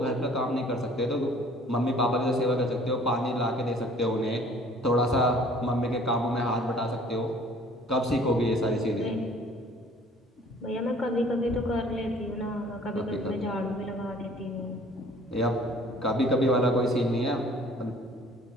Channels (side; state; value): both; normal; correlation 0.53